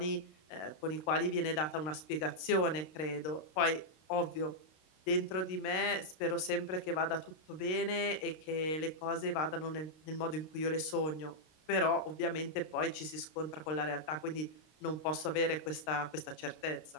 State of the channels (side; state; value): right; late; 32 ms